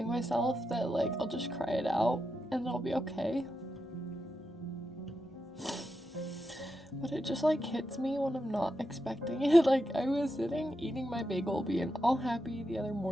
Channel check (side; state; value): both; normal; correlation 0.87